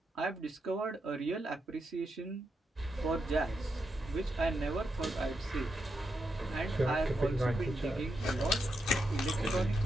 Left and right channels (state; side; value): normal; both; correlation 0.84